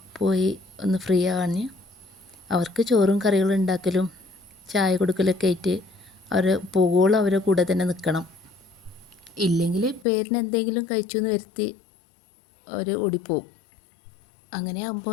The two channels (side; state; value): right; drops out; at 10.1 s